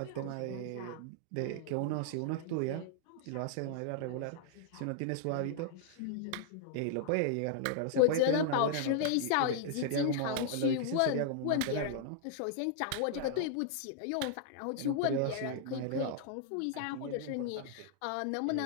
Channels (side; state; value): both; different; correlation -0.01